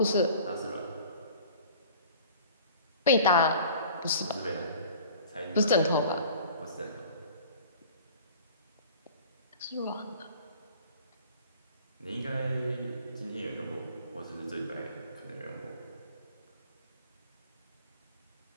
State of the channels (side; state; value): both; inverted; correlation -0.45